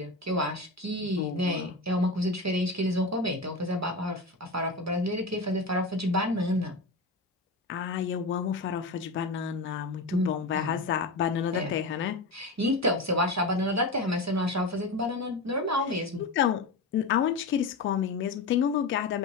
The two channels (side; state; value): right; quieter; 3.2 dB